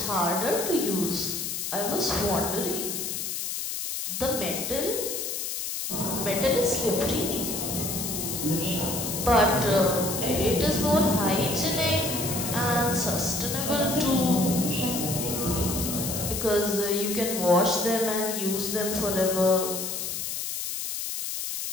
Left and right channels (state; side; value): noise; left; hiss, 3 dB below the sound